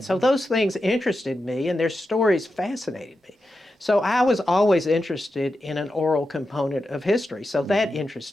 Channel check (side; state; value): both; normal; correlation 0.89